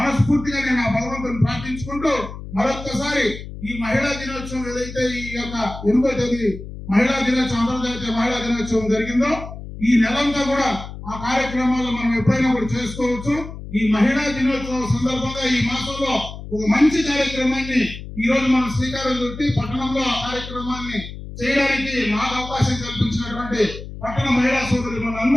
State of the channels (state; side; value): noise; left; hum, 11 dB below the sound